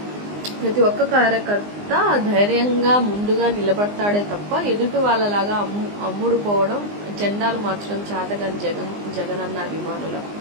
ప్రతి ఒక్క కార్యకర్త ధైర్యంగా ముందుగా నిలబడతాడే తప్ప ఎదుటి వాళ్ళలాగా అమ్ముడు పోవడం, జెండాలు మార్చడం చేతగాని జగన్ అన్న అభిమానుల.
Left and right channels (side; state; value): left; late; 19 ms